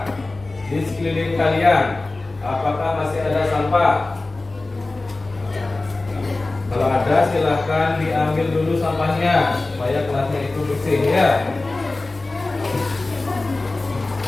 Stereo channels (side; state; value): right; quieter; 3.2 dB